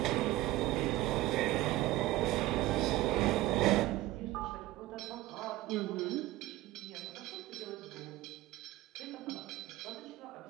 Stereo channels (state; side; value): quieter; left; 16.8 dB